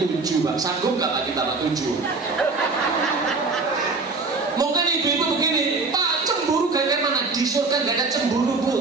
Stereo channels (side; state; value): left; quieter; 4.0 dB